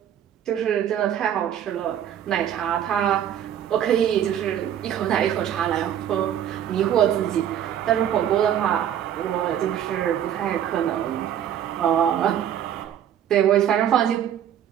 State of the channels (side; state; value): left; quieter; 10.0 dB